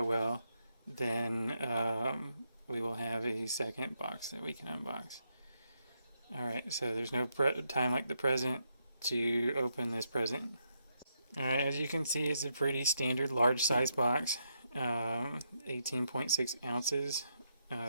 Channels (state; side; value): inverted; both; correlation -0.80